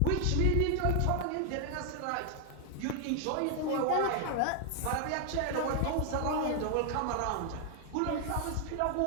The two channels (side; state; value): both; different; correlation 0.00